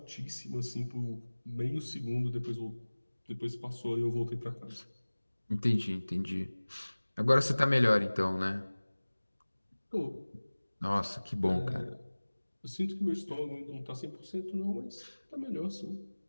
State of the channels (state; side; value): inverted; both; correlation -1.00